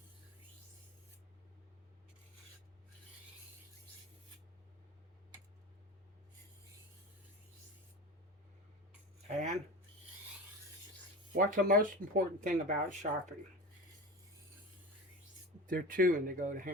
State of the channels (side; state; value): both; normal; correlation 0.29